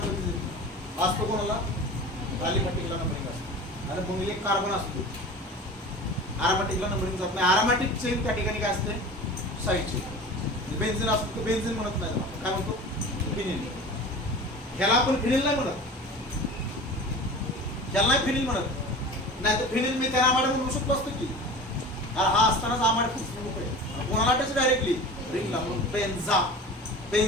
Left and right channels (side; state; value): both; normal; correlation 0.36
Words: कधी देतो असतो, कोणाला, अलिफॅटिकला नंबरिंग असतं. आणि मग एक कार्बन असतो, अरोमॅटिकला नंबरिंग जात नाही. अरोमॅटिक चेन त्या ठिकाणी काय असते, साईडची. बेन्झीन असतो तर बेन्झीन म्हणत नाही, काय म्हणतो, फिनिल. ह्याला आपण फिनिल नाही म्हणत, ह्याला नाही फिनिल म्हणत. नाही तर फिनिल मी त्याला आमाड म्हणू शकतो असतो की, हा असतानाच आमाड खूप कोणाला टच डायरेक्टली रिंगला, म्हणून बेन्झा,